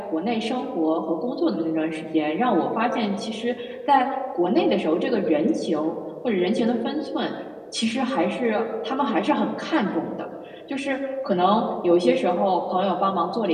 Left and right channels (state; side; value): identical; both; correlation 1.00